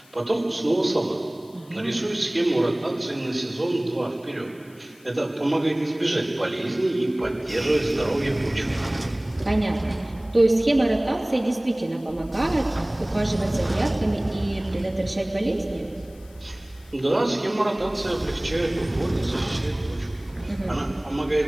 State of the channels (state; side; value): noise; left; hiss, 27 dB below the sound